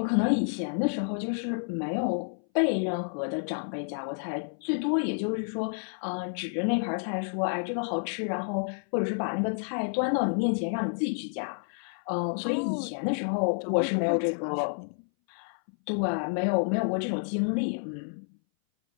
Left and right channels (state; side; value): silent; right; 58 dB below the other